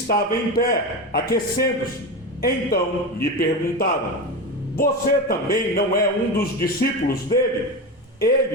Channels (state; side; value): normal; both; correlation 0.21